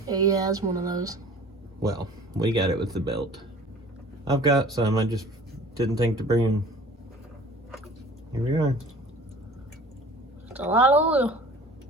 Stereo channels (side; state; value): both; normal; correlation 0.46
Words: Yeah, it's one of those. Well, we got it with the belt. I've got some, I just didn't think to bring them. Here we are. It's a lot of oil.